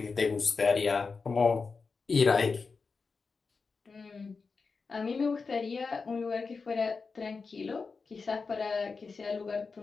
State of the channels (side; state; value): right; quieter; 4.7 dB